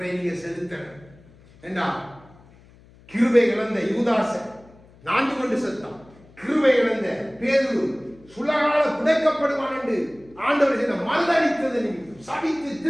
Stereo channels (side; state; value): left; noise; hum, 26 dB below the sound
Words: நீங்க செலுத்த ஏண்டா. கிருபை இழந்த யூதாச நான்கு கொண்டு செத்தான். கிருபை இழந்த பேதுரு சுலகால புதைக்கப்படுவான் என்று ஆண்டவர் செய்த மறுதளித்தது நிமித்தம் சபித்து